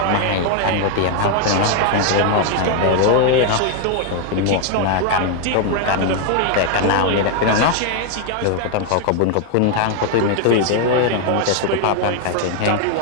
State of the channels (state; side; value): different; both; correlation 0.01